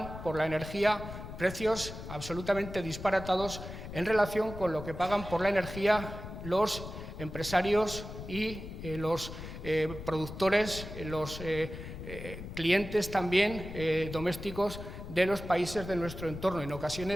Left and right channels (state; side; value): noise; left; rumble, 10 dB below the sound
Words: por la energía precios absolutamente disparatados en relación con lo que pagan por la energía los empresarios y los productores, los clientes también domésticos de los países de nuestro entorno. En